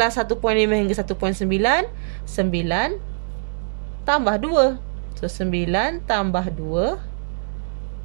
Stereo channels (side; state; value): left; silent; 64 dB below the other